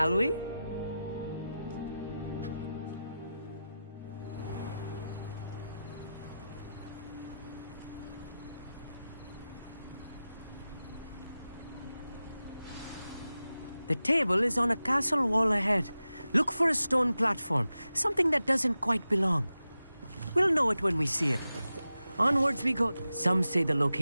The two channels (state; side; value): inverted; both; correlation -0.92